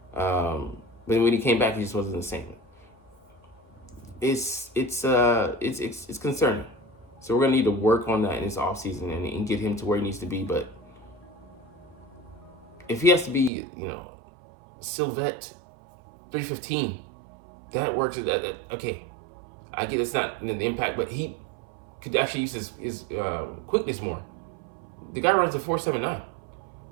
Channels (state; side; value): drops out; left; at 13.5 s